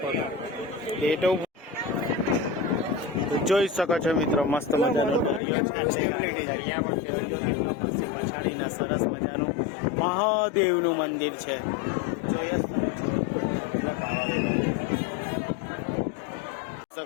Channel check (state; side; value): drops out; right; at 5.4 s